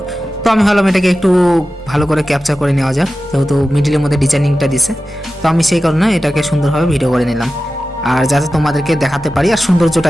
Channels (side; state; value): both; normal; correlation 0.94